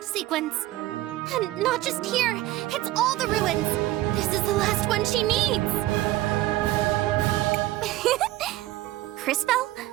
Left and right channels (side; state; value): left; quieter; 16.3 dB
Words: sequence. And not just here, it's all the ruins. This is the last one she needs. Crisbell?